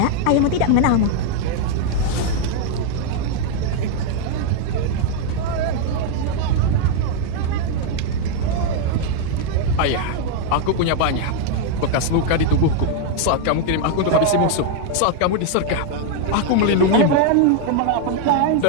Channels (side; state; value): both; different; correlation 0.00